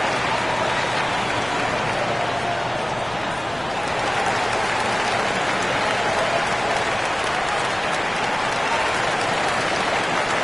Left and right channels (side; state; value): left; noise; rumble, 21 dB below the sound